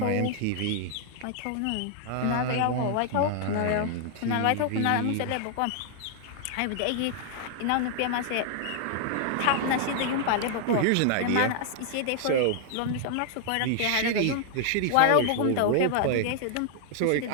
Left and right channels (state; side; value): different; both; correlation 0.00